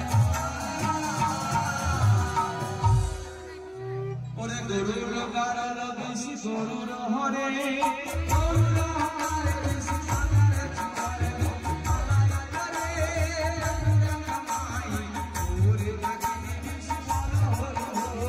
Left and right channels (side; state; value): both; identical; correlation 1.00